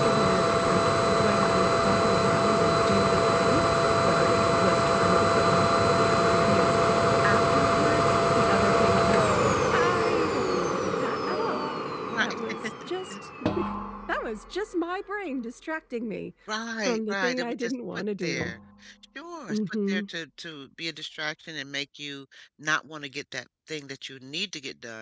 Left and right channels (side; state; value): both; identical; correlation 1.00